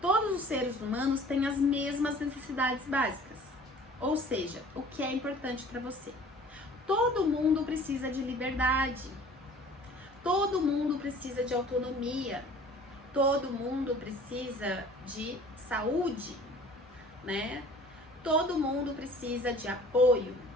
Todos os seres humanos têm as mesmas necessidades básicas, ou seja, o que é importante para você. Todo mundo precisa de liberdade, todo mundo precisa de autonomia, todo mundo precisa de saúde, né? Todo mundo precisa de apoio.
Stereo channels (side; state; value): both; normal; correlation 0.48